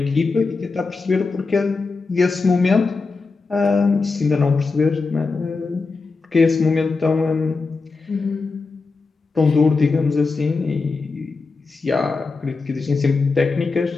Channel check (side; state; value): right; quieter; 4.2 dB